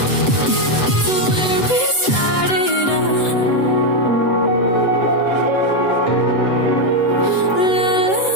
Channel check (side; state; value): right; late; 7.9 ms